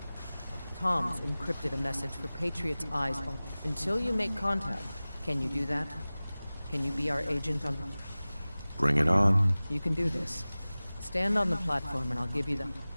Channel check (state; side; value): inverted; both; correlation -0.98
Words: Tom's encrypted a message for Patriot's eyes. Until you make contact, can you do that? Can you be our agent on... Bring it on. You can do this. Stand on the platform and I'll give you the...